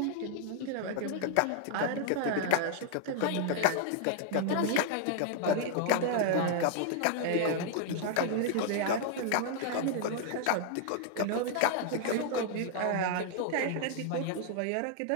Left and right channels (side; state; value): both; different; correlation 0.00